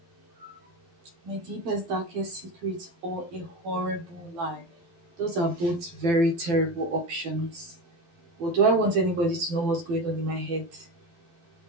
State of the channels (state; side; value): late; left; 12 ms